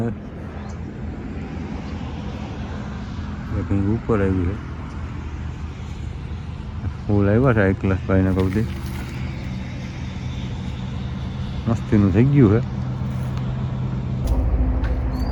એક હિંગ ઉપર આવી છે. ફૂલ આવ્યા છે એક ક્લાસ ભાઈને કહું દે, મસ્તીનું થઈ ગયું છે.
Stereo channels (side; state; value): both; identical; correlation 1.00